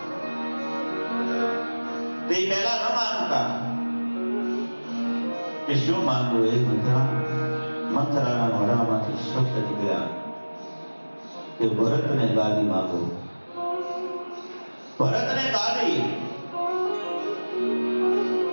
તે પહેલા ન માંગતા. કે શું માંગવું એ મંથરાના મોઢામાંથી શબ્દ નીકળ્યા કે ભરતને ગાદી માંગો, ભરતને ગાદી.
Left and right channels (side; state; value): both; inverted; correlation -1.00